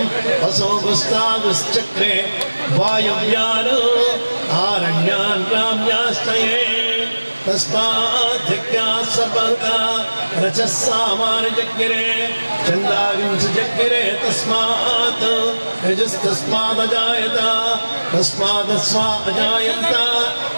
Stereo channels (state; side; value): inverted; both; correlation -1.00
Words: असोगुस्तागुश्चक्रे वायव्यान् आरण्यान् ग्राम्यास्तये तस्माद्यज्ञात् सर्वहुता रचः सामान्यजज्ञिरे चन्दाविंशजज्ञिरे तस्मात् यजस्तस्मादजायत तस्मादस्वा अजायन्त